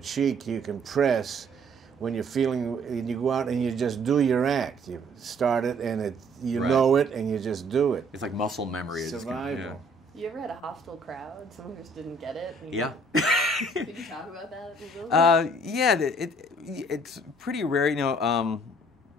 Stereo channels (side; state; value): both; normal; correlation 0.59